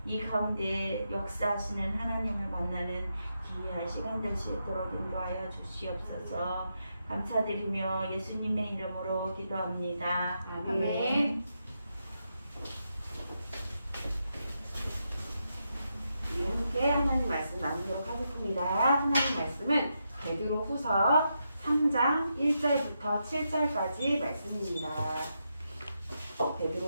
이 가운데 역사하시는 하나님을 만나는 귀한 시간 될 수 있도록 인도하여 주시옵소서. 감사드리며 예수님의 이름으로 기도합니다. 아멘. 우리 함께 하나님 말씀 나누도록 하겠습니다. 하나님 말씀은 베드로후서 3장 1절부터 7절까지 말씀입니다.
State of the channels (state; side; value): inverted; both; correlation -0.84